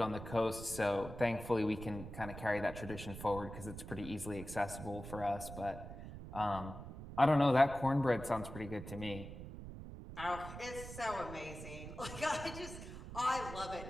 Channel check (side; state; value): right; noise; rumble, 11 dB below the sound